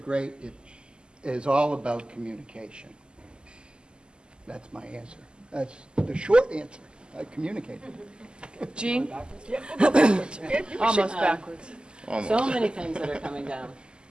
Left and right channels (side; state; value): left; late; 0.048 ms